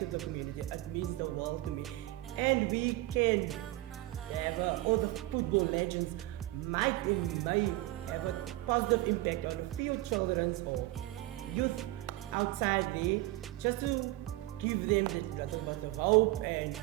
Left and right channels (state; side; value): quieter; left; 18.1 dB